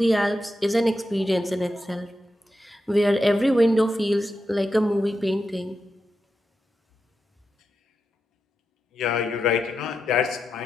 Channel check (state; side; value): normal; both; correlation 0.88